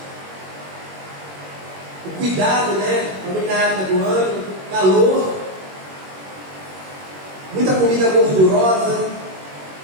O cuidado, né? Também na época do ano, calor, muita comida gordurosa,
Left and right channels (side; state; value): left; late; 21 ms